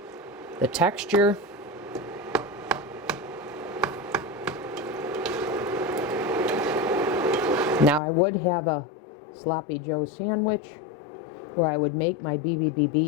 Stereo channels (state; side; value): drops out; right; at 8.0 s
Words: the texture. Now I would have a sloppy joe sandwich where I would make my